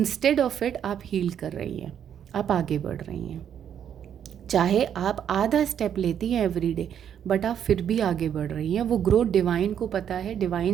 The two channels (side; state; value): left; quieter; 9.0 dB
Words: ऑफ इट आप हील कर रही हैं, आप आगे बढ़ रही हैं। चाहे आप आधा स्टेप लेती हैं एवरी डे, बट आप फिर भी आगे बढ़ रही हैं। वो ग्रोथ डिवाइन को पता है,